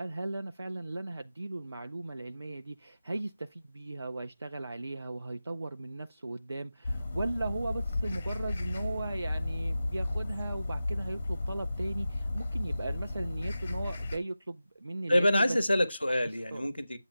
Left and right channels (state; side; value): inverted; both; correlation -0.94